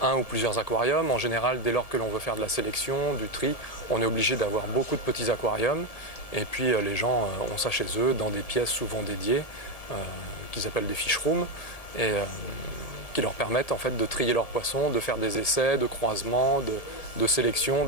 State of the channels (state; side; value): late; right; 1.7 ms